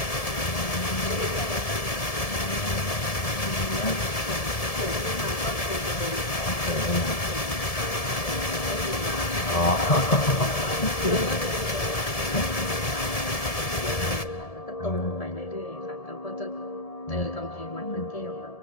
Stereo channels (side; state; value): right; late; 1.7 ms